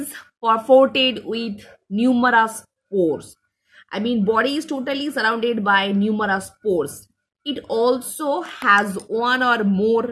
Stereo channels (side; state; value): both; identical; correlation 1.00